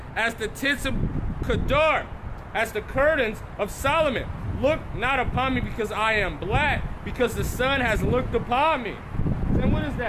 as the tents of Kedar, as the curtains of Solomon. Look not upon me because I am black, because the sun has looked upon me. And what is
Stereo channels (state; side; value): identical; both; correlation 1.00